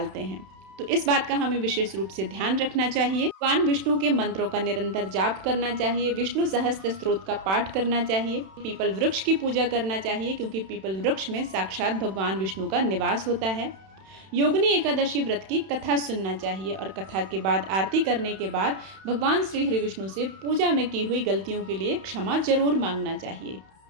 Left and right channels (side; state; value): left; late; 31 ms